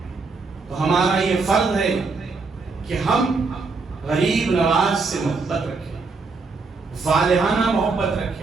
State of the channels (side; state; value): left; quieter; 4.2 dB